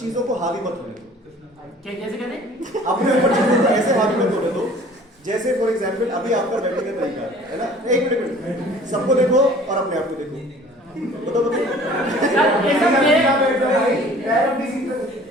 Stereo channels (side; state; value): both; normal; correlation 0.50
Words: को हावी मत होने दो। कैसे कहते? अपने ऊपर चीजों को ऐसे हावी मत होने दो जैसे फॉर एग्जाम्पल अभी आपका बैठने का तरीका है ना, एक मिनट सबको देखो और अपने आप को देखो, बताओ